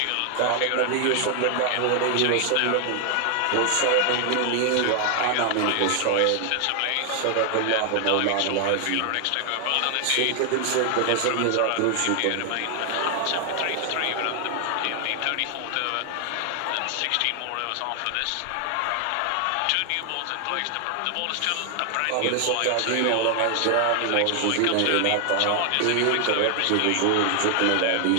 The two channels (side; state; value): both; different; correlation 0.00